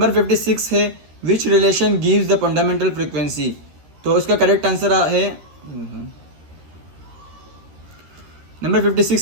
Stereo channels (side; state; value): left; late; 13 ms